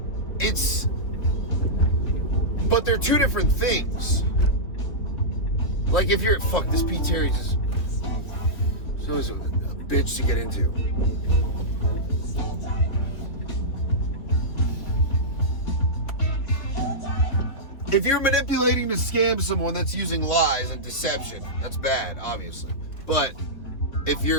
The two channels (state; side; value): late; right; 3.8 ms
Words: But they're two different things. Like if you're, this Pete Terry is always a bitch to get into. If you're manipulating to scam someone, that's using lies and deception. That's bad, obviously. But if